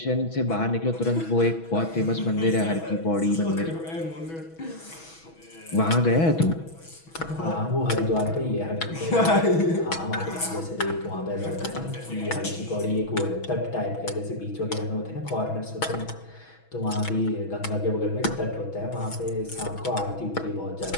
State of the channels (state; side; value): late; right; 6.2 ms